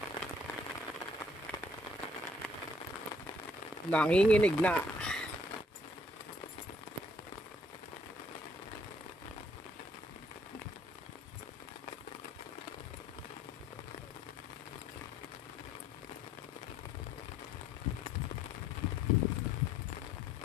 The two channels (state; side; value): normal; both; correlation 0.63